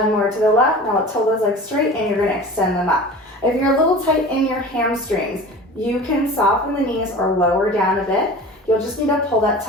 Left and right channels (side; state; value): both; normal; correlation 0.38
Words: more to the left. Now let's hold those legs straight and you're gonna extend them up. If you're a little tight in your hamstrings, you can soften the knees or lower down a bit. You'll just need to pull that